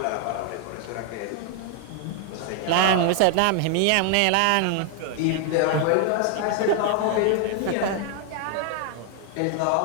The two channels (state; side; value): different; both; correlation 0.00